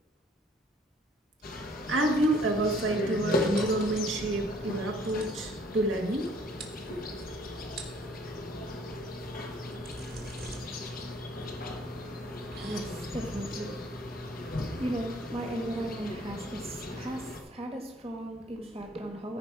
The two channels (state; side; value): normal; both; correlation 0.58